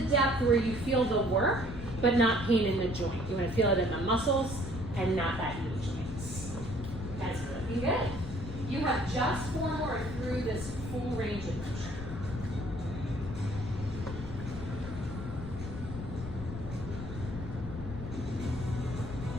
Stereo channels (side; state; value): left; noise; rumble, 8 dB below the sound